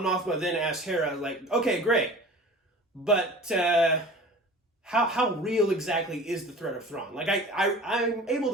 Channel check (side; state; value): both; normal; correlation 0.41